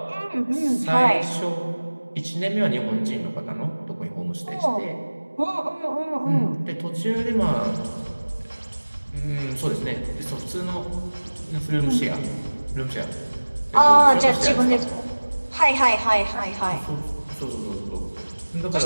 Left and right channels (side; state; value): both; inverted; correlation -1.00